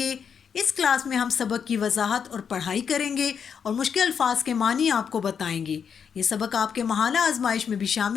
اس کلاس میں ہم سبق کی وضاحت اور پڑھائی کریں گے اور مشکل الفاظ کے معنی آپ کو بتائیں گے۔ یہ سبق آپ کے ماہانہ آزمائش میں بھی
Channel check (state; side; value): quieter; right; 7.1 dB